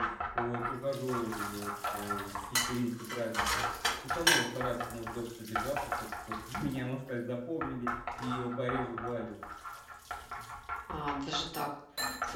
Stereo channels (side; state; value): both; identical; correlation 1.00